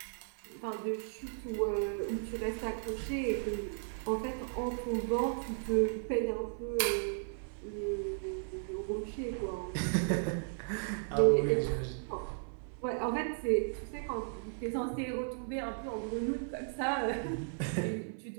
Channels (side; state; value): left; silent; 54 dB below the other